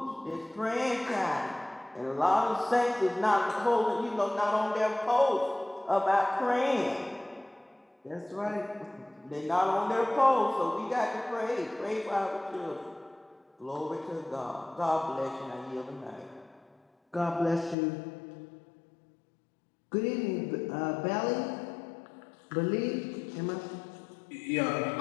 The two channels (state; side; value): drops out; right; at 17.8 s